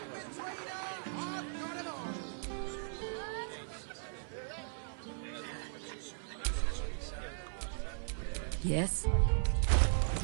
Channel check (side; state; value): left; silent; 53 dB below the other